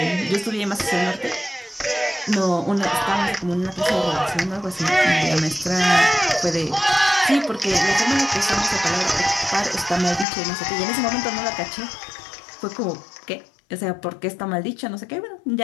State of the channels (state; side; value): drops out; right; at 10.2 s